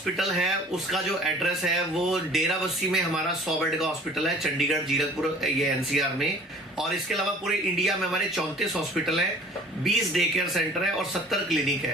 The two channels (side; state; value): both; normal; correlation 0.48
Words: है उसका जो एड्रेस है वो डेराबस्सी में हमारा 100 बेड का हॉस्पिटल है, चंडीगढ़, जीरकपुर, ये एनसीआर में। और इसके अलावा पूरे इंडिया में हमारे 34 हॉस्पिटल है, 20 डे केयर सेंटर है और 70 क्लिनिक